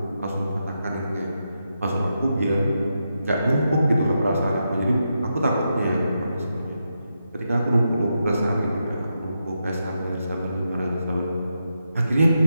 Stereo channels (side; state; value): both; inverted; correlation -0.85